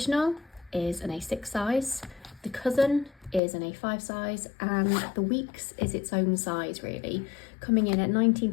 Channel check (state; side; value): drops out; right; at 3.4 s